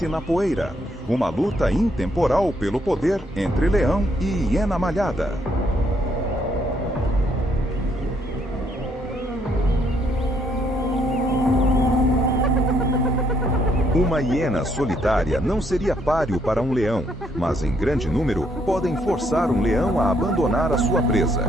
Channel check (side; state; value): both; normal; correlation 0.71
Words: na poeira. Uma luta intemporal pelo poder entre leão e hiena malhada. Uma hiena solitária não seria páreo para um leão, mas em grande número podem forçar um leão a abandonar a sua presa.